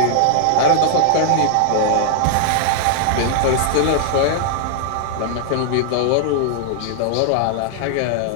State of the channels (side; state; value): both; different; correlation -0.01